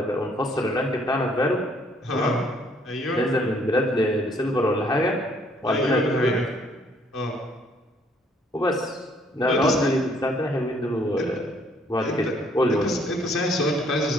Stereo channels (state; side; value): normal; both; correlation 0.64